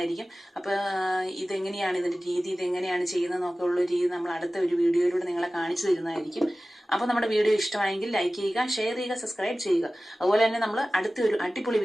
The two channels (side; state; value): both; normal; correlation 0.97